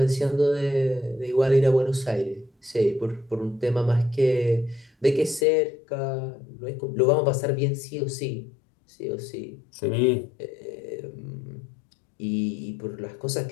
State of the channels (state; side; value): drops out; right; at 5.5 s